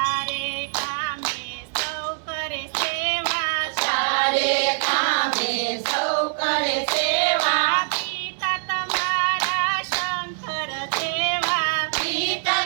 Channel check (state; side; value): silent; left; 63 dB below the other